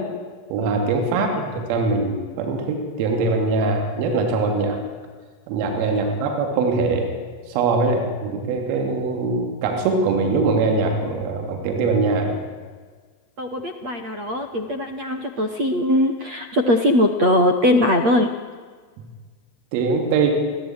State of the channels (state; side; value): late; left; 8.4 ms